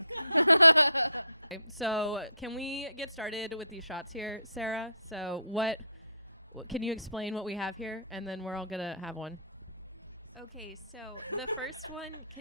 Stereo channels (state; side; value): inverted; both; correlation -0.65